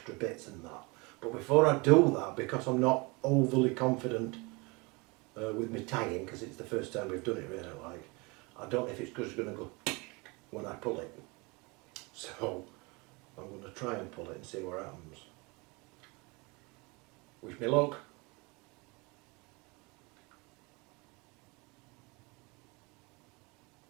bits and that. But before I do that, because I'm not overly confident with me tying, because it's the first time we've done it really, like, I don't know if it's just going to go when I pull it. So I'm going to try and pull it and see what happens. Wish me luck.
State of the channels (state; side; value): quieter; left; 27.2 dB